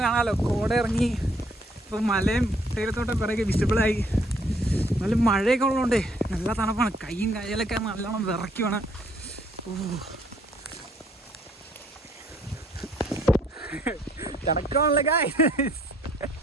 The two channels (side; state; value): both; normal; correlation 0.65